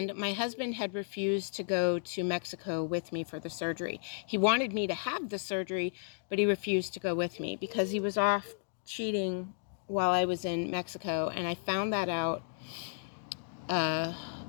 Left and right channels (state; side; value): silent; right; digital silence